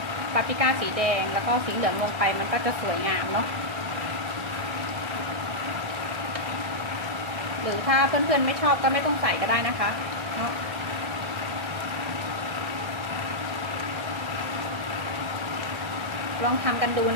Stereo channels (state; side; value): late; left; 1.6 ms